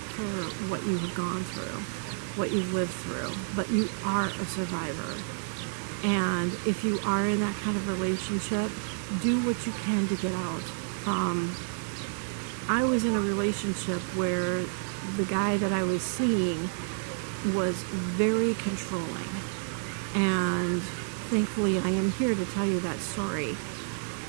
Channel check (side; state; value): left; silent; digital silence